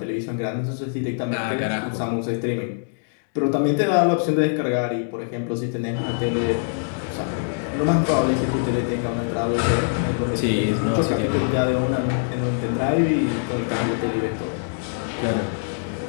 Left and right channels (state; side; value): silent; right; 63 dB below the other